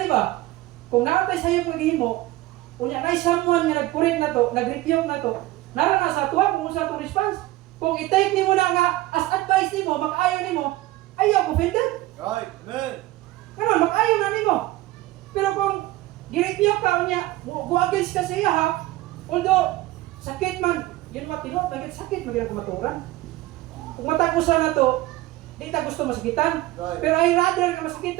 di ba? Kung nakatay sa iyo paghihimo, kunya na someone nga nag-correct na to, nag-rebuke na to, naran na sa tuwa kung sa atong response. Kung i-take nimo na nga as advice nimo, makayo nimo, ayaw offended. Right. Amen. Pero makayo na nimo. Pero kung gi-rebuke ka unya, go-against ka sa iya ha, although sakit man, yun mga tinod, sakit magiging kumaturan. Kung matapusan na to, di ta gusto masakitan. Right. Pero I rather nga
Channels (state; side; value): quieter; left; 17.6 dB